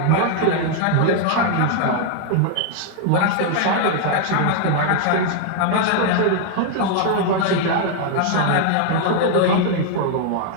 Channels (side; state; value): both; different; correlation 0.00